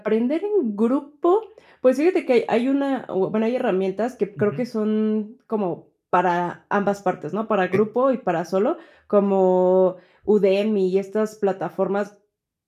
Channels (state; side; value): identical; both; correlation 1.00